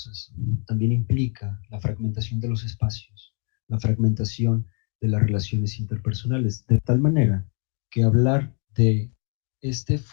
también implica la fragmentación de los espacios, la fragmentación de las relaciones interpersonales, de tal manera que hablar de este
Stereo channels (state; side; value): quieter; right; 38.9 dB